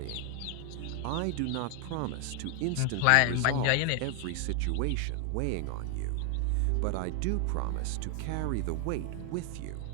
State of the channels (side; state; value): both; different; correlation 0.00